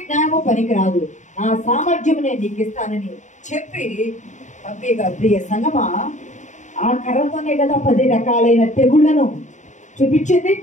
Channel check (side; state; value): right; late; 0.35 ms